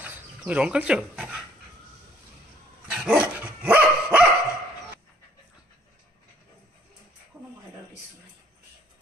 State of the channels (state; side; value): normal; both; correlation 0.61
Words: তুমি রং খেলছো? কোনো ভয়ের কিছু নাই।